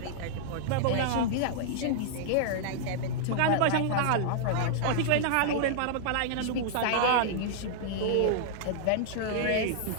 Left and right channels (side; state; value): both; different; correlation -0.01